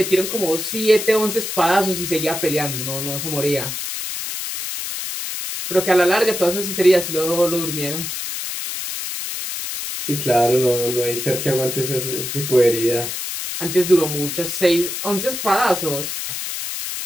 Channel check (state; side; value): noise; left; hiss, 5 dB below the sound